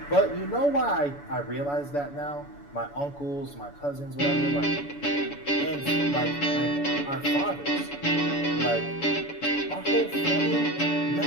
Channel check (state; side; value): late; right; 7.0 ms